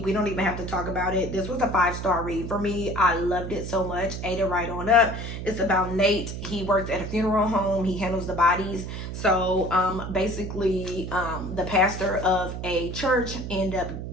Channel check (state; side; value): noise; right; hum, 7 dB below the sound